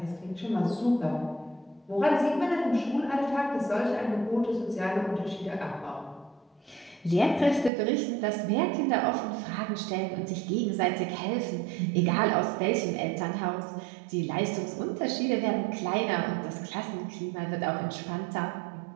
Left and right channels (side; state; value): left; drops out; at 7.7 s